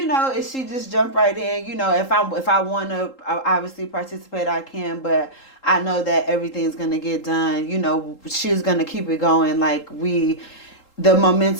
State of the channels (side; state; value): right; late; 3.8 ms